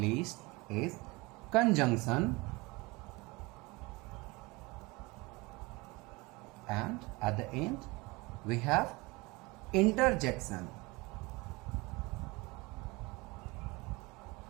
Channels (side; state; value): left; quieter; 24.3 dB